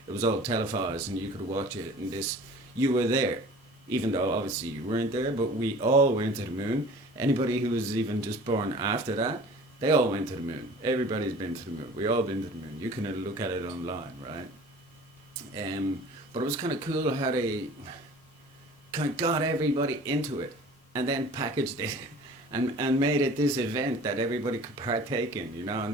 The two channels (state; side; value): normal; both; correlation 0.45